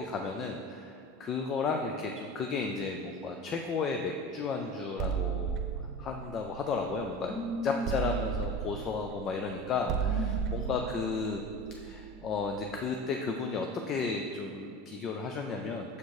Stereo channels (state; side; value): normal; both; correlation 0.34